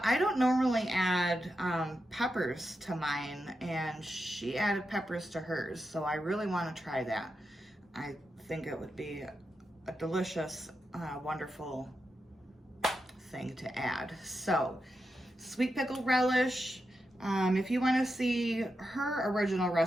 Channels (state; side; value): normal; both; correlation 0.88